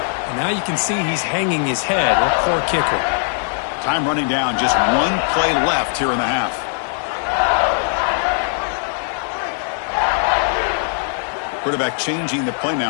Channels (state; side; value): silent; right; digital silence